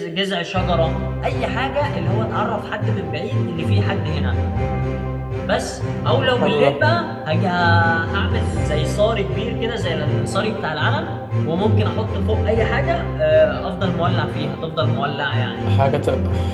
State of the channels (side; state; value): both; identical; correlation 1.00